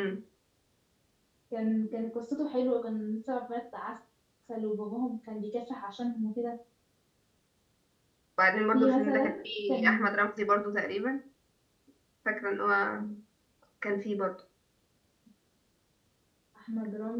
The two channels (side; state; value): both; identical; correlation 1.00